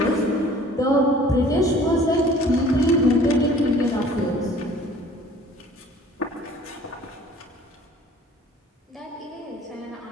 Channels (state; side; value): normal; both; correlation 0.51